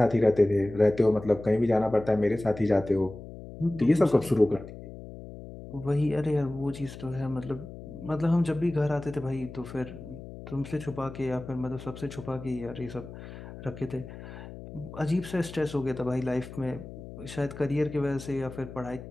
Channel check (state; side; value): noise; left; hum, 13 dB below the sound